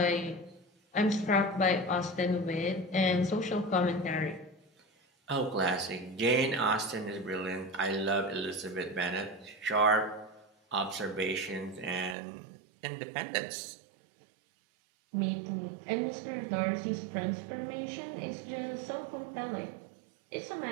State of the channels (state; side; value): drops out; left; at 12.2 s